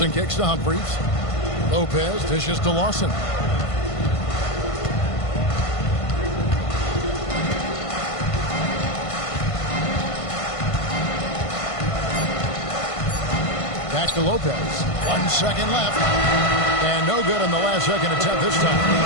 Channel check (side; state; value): right; late; 1.5 ms